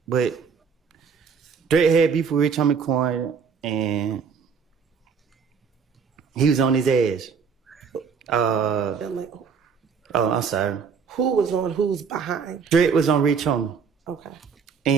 but Threat had beef with Rich Homie Quan, and he was on his ass. I'm sorry. Who was on who's behind? Threat was on Rich Homie. Okay.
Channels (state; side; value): quieter; left; 6.1 dB